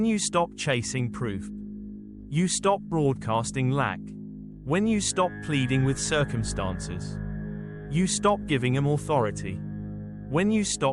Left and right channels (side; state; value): both; identical; correlation 1.00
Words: you stop chasing proof, you stop broadcasting lack. When you stop pleading with circumstances, you stop giving them authority. When you